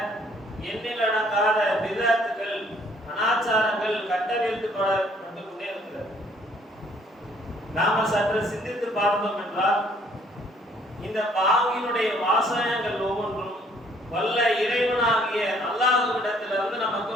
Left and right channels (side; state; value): both; normal; correlation 0.62